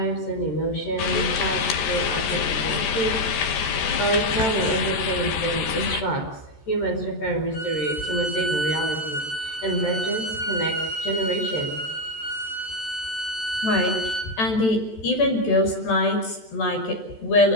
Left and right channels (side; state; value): right; late; 14 ms